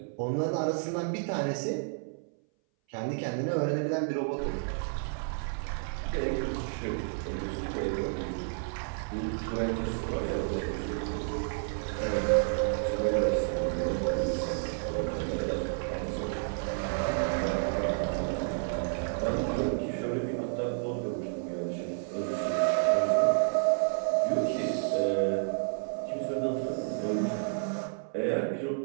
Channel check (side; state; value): left; silent; 57 dB below the other